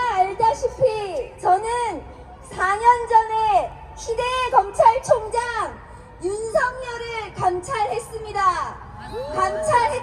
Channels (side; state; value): both; identical; correlation 1.00